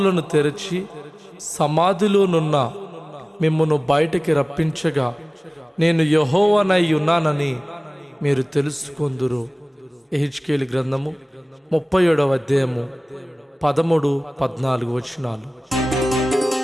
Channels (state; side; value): normal; both; correlation 0.98